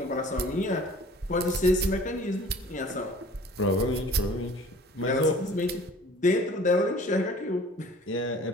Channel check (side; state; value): both; normal; correlation 0.48